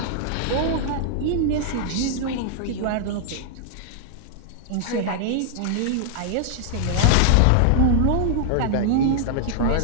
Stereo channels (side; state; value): both; different; correlation -0.01